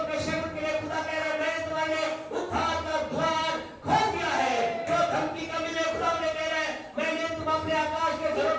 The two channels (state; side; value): identical; both; correlation 1.00